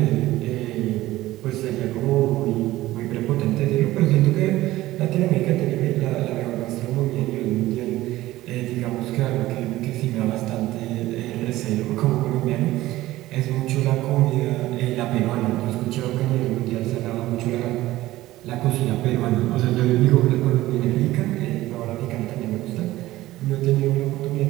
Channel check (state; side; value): quieter; left; 16.5 dB